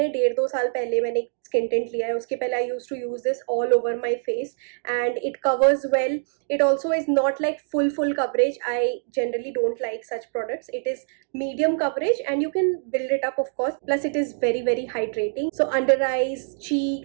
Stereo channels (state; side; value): silent; left; digital silence